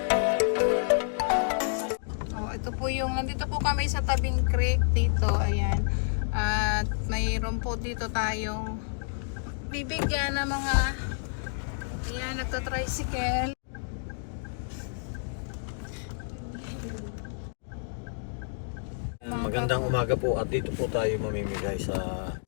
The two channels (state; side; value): silent; right; digital silence